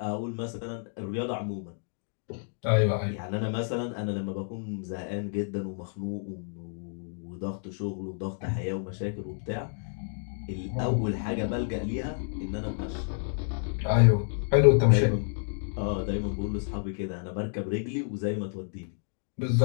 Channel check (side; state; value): right; silent; 58 dB below the other